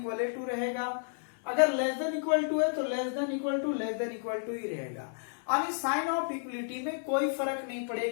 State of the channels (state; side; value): silent; right; 57 dB below the other